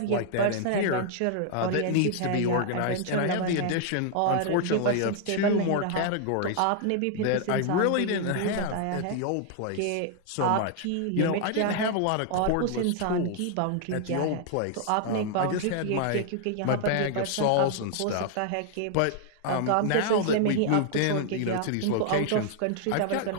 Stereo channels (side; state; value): both; different; correlation 0.00